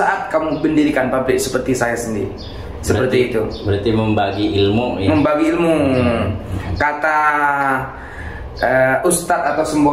kamu mendirikan pabrik seperti saya sendiri. Seperti itu. Berarti membagi ilmu ya. Membagi ilmu. Kata Ustadz atau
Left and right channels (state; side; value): identical; both; correlation 1.00